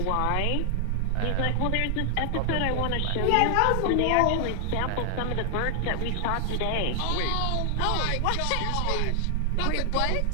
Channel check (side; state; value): both; different; correlation 0.00